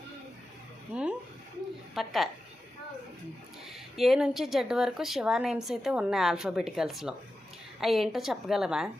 పక్క. ఏ నుంచి జెడ్ వరకు శివ నేమ్స్ అయితే ఉన్నాయి ఆల్ఫాబెటికల్స్లో. అవి ఏంటో చెప్పగలవా?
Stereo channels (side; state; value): both; normal; correlation 0.92